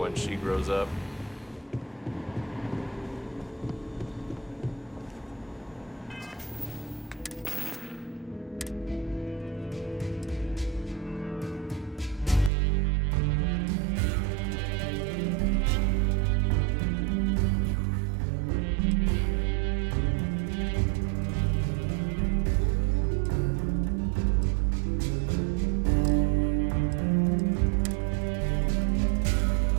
she grows up.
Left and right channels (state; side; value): drops out; left; at 12.5 s